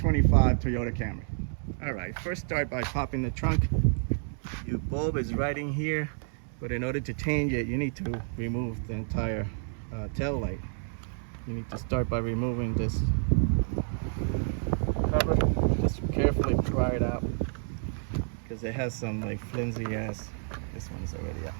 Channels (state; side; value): silent; left; 58 dB below the other